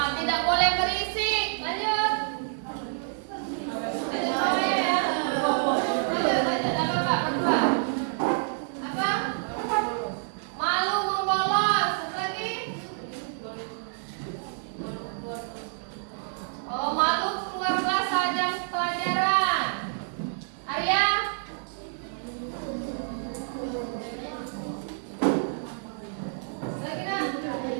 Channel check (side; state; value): left; silent; 59 dB below the other